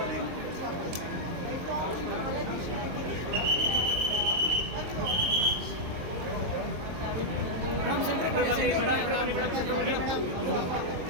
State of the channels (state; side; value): late; left; 23 ms